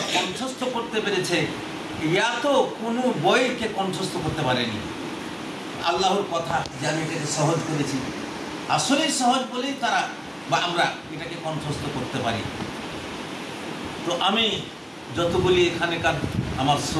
কণ্ঠস্থ করতে পেরেছে, ইয়া তো কোনো বইকে কণ্ঠস্থ করতে পারেনি। আল্লাহর কথা যে আমি এটাকে সহজ করেছি, আসলেই সহজ বলেই তারা বা আমরা এটাকে কণ্ঠস্থ করতে পারি। তো আমি যতগুলি এখানেকার আমার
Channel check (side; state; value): both; identical; correlation 1.00